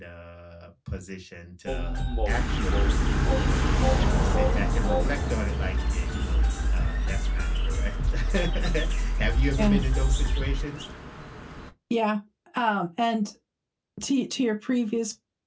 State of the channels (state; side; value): identical; both; correlation 1.00